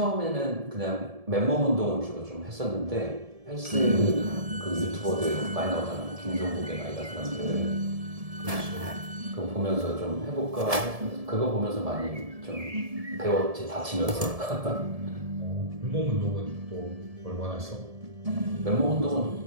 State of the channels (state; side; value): late; left; 1.7 ms